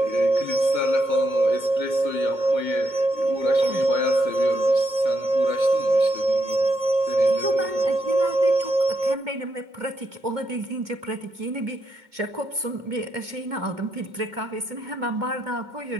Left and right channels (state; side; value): late; left; 2.2 ms